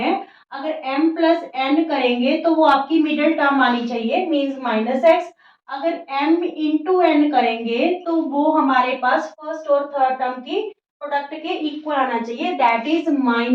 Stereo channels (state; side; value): identical; both; correlation 1.00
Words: अगर m प्लस n करेंगे तो वो आपकी मिडिल टर्म आनी चाहिए, मींस -x। अगर m इंटू n करेंगे तो वो हमारे पास फर्स्ट और थर्ड टर्म की प्रोडक्ट के इक्वल आना चाहिए, दैट इज